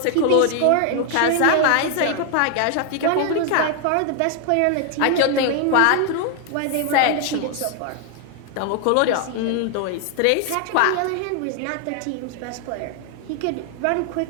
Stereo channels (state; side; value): different; both; correlation 0.00